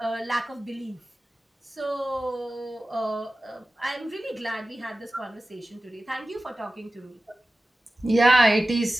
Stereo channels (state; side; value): normal; both; correlation 0.96